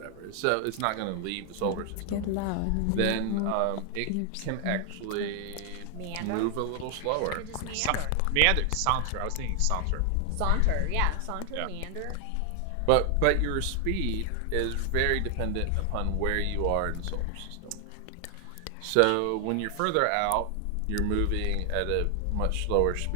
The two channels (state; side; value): different; both; correlation 0.00